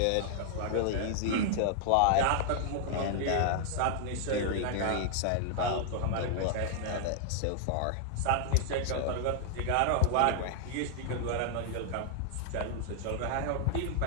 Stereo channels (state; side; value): different; both; correlation -0.01